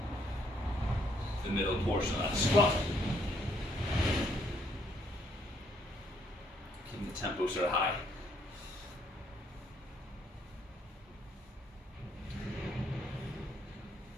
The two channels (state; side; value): normal; both; correlation 0.69